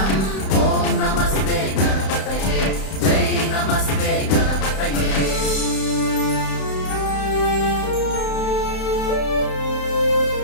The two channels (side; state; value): right; late; 32 ms